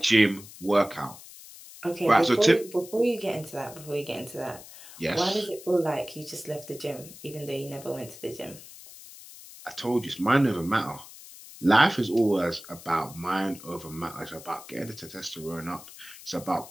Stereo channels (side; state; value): left; noise; hiss, 17 dB below the sound